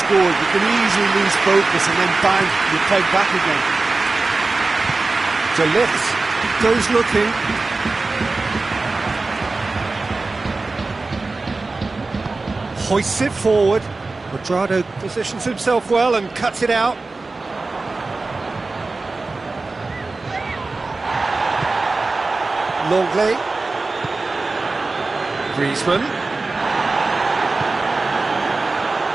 You can easily lose focus and then bang, you peg back again. De Ligt goes looking. Hoists it forward. Quadrado positions himself well and cuts it out. Longley. Griezmann.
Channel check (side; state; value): left; quieter; 3.6 dB